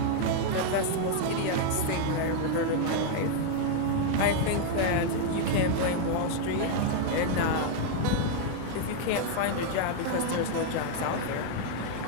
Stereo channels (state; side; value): different; both; correlation 0.00